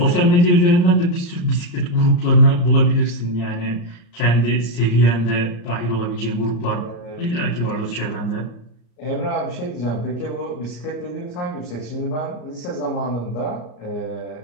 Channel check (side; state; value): right; late; 34 ms